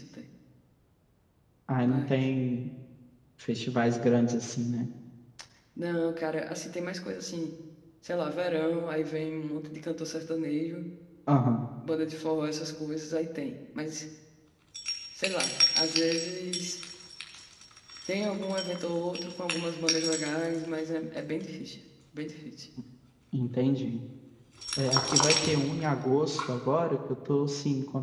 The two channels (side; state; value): both; identical; correlation 1.00